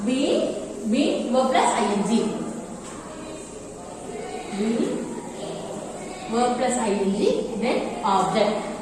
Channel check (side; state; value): both; identical; correlation 1.00